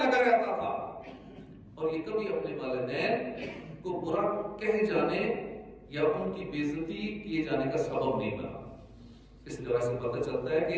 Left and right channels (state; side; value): identical; both; correlation 1.00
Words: رہتا تھا اور یہ کبھی اپنے والدین کو برا کہہ جانے یا ان کی بے عزتی کیے جانے کا سبب نہیں بنا اس طرح سے پتہ چلتا ہے